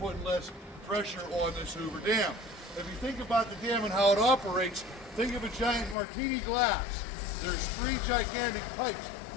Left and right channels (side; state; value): right; drops out; at 6.0 s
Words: less pressure on this Hoover Dam. If you think about the dam and how it operates, think of a giant martini glass. There's 3 gigantic pipes